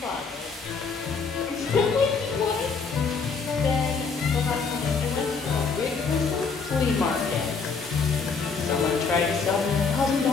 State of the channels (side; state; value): right; quieter; 5.1 dB